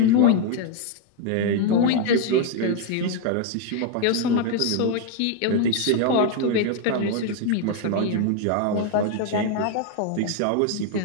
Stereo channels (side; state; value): both; different; correlation 0.00